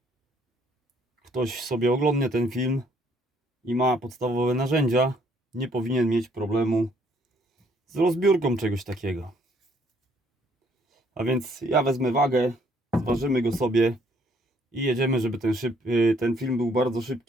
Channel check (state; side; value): normal; both; correlation 0.66